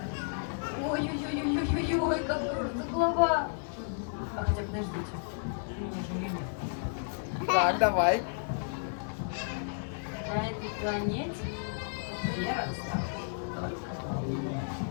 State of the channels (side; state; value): right; silent; digital silence